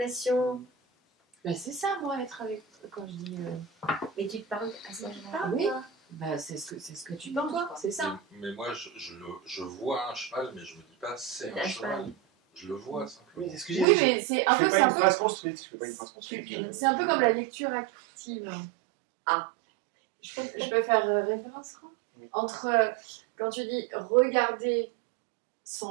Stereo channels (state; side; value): drops out; left; at 13.9 s